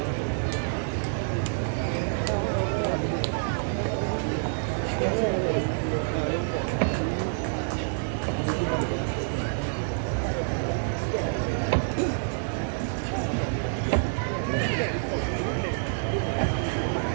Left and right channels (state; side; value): silent; left; digital silence